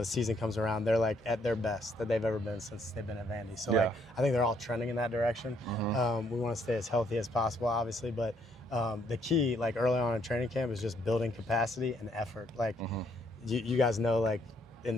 season comes around, they're like at their best that they've ever been since they've been at Vandy. So I think they're all trending in that direction. We want to stay as healthy as possible, obviously, but the key, like early on in training camp, is just building capacity and effort. Like you guys know, like in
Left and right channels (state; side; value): normal; both; correlation 0.69